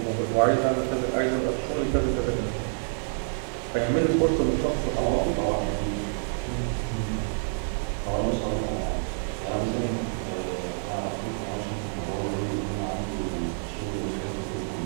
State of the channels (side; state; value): left; silent; digital silence